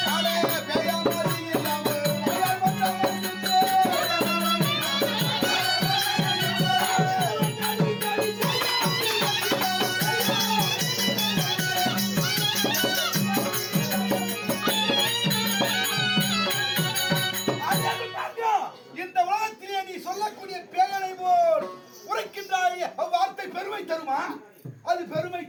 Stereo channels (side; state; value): both; identical; correlation 1.00